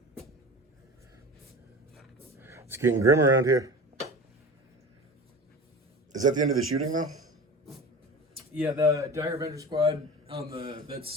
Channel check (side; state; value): both; normal; correlation 0.34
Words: It's getting grim around here. Is that the end of the shooting, though? Yeah, the Dire Avenger squad on